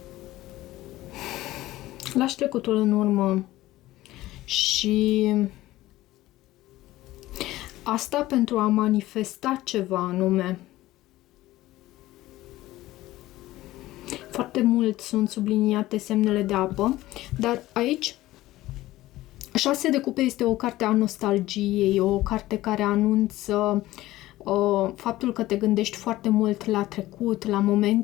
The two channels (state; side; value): quieter; right; 16.5 dB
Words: Lași trecutul în urmă și asta pentru a manifesta ceva anume. Foarte mult sunt subliniate semnele de apă, dar aici 6 de cupe este o carte a nostalgiei, o carte care anunță faptul că te gândești foarte mult la trecut, la